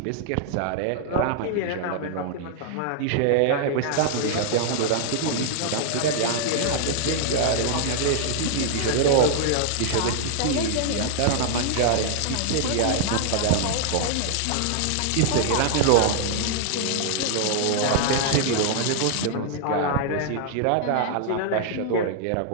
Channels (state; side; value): different; both; correlation -0.01